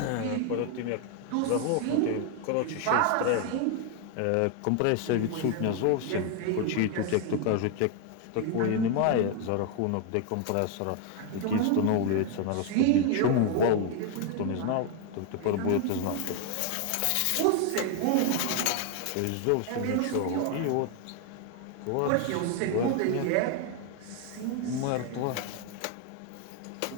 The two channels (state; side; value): different; both; correlation 0.01